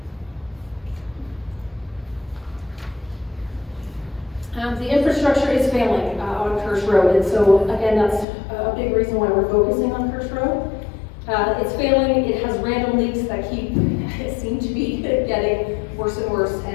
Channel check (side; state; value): right; drops out; at 8.2 s